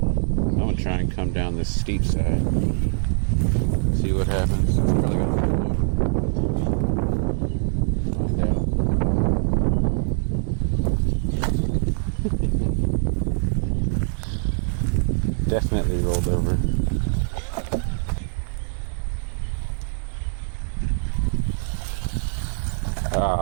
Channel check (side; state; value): left; silent; digital silence